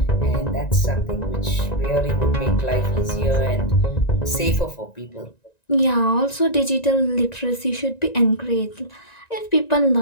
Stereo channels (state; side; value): late; right; 1.9 ms